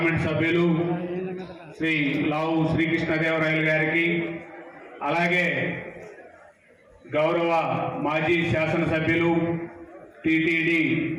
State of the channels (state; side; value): identical; both; correlation 1.00